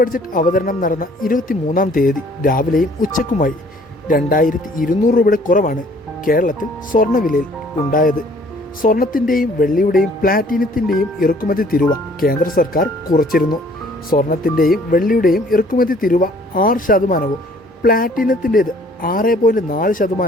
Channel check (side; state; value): both; normal; correlation 0.57